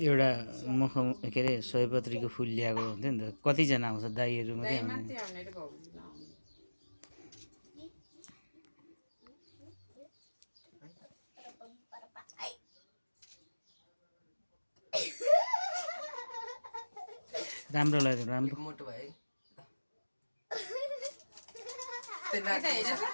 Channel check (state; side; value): inverted; both; correlation -1.00